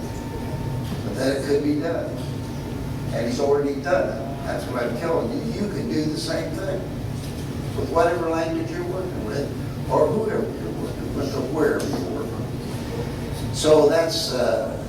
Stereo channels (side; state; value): both; identical; correlation 1.00